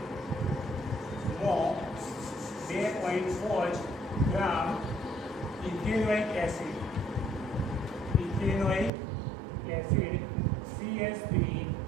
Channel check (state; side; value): drops out; left; at 8.9 s